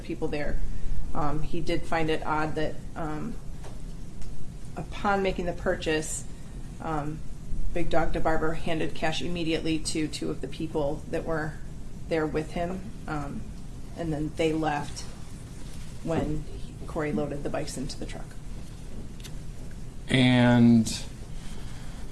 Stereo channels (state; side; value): identical; both; correlation 1.00